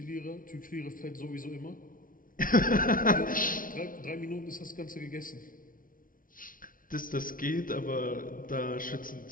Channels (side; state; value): right; late; 0.40 ms